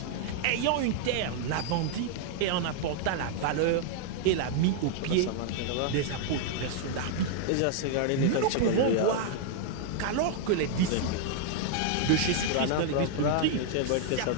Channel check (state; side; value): different; both; correlation 0.00